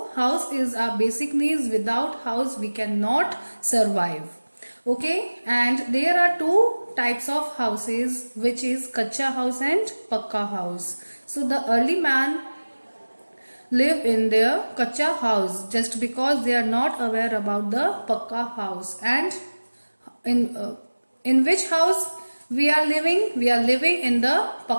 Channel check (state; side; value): inverted; both; correlation -1.00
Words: house is our basic needs. Without house we cannot survive. Okay, and there are two types of houses, which is kacha house and pakka house. So the early man live in their kacha house just because they are not aware about the pakka house. And in in which house we are living? We are living in the